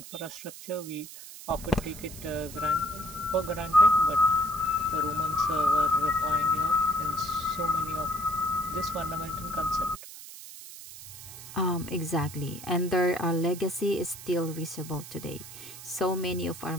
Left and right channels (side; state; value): right; noise; hiss, 14 dB below the sound